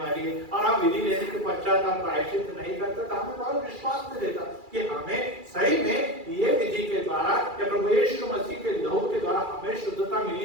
है, और हम विधि लेने के पश्चात हम प्रायश्चित नहीं करते, तो हमें बहुत विश्वास नहीं देता कि हमें सही में ये विधि के द्वारा या प्रभु यीशु मसीह के लहू के द्वारा हमें शुद्धता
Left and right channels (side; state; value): left; late; 2.3 ms